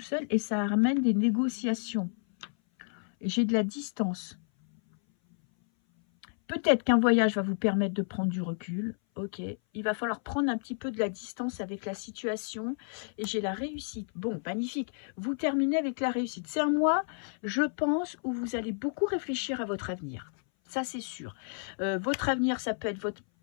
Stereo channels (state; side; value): silent; right; 57 dB below the other